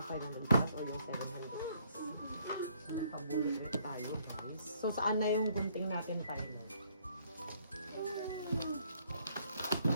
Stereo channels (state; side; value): inverted; both; correlation -0.66